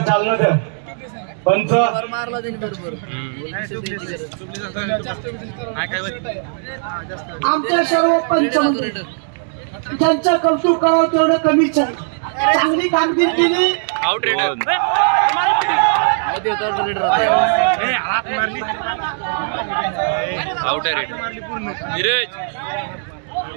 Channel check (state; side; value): silent; left; digital silence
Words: द्या. पंच आमचे सर्व पंच ज्यांचं कौतुक करावं तेवढं कमीच आहे. चांगली कामगिरी केली.